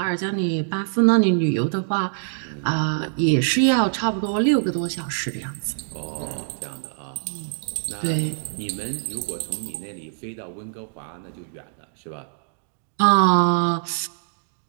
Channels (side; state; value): left; silent; digital silence